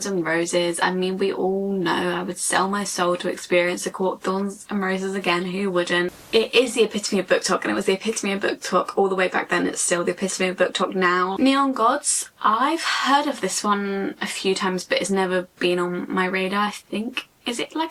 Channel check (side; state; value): both; identical; correlation 1.00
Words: and Roses. I mean, we all know I would sell my soul to experience A Court of Thorns and Roses again. Who wouldn't? It is the epitome of BookTok, and it was the epitome of BookTok all the way back then. It's still the epitome of BookTok now. Neon Gods. I've heard of this one a few times, but it's never been on my radar. I think, is it